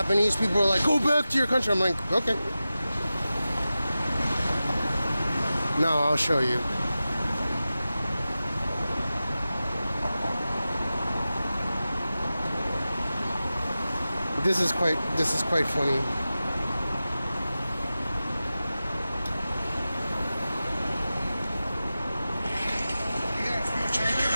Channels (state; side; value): inverted; both; correlation -0.94